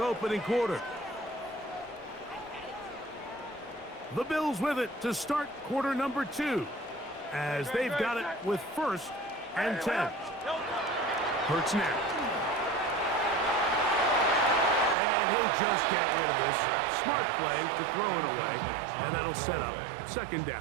quarter. The Bills with it to start quarter number 2 as they've got it with 1st and 10. Hurts now. And he'll just get rid of this. Smart play to throw it away, and that'll set up 2nd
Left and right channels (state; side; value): drops out; left; at 15.0 s